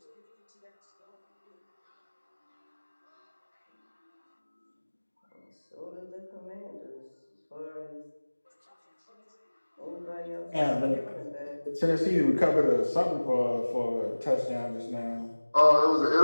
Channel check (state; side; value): inverted; both; correlation -1.00